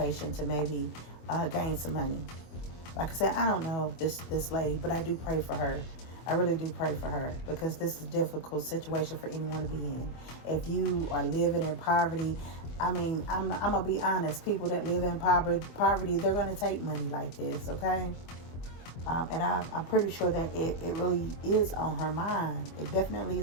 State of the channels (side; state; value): right; late; 24 ms